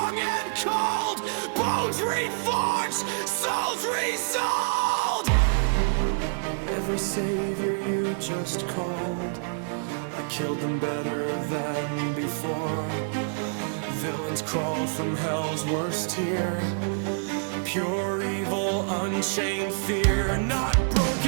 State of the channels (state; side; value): silent; left; digital silence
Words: and cold. Bones reforged, souls resold. Every savior you just called, I killed them better than before. Villains crawl from hell's worst tier. Pure evil, unchained fear. Not